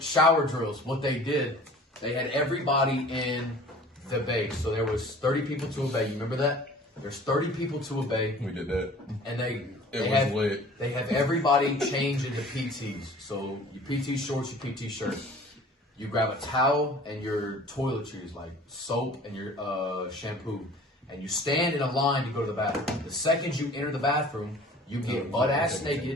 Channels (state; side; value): normal; both; correlation 0.47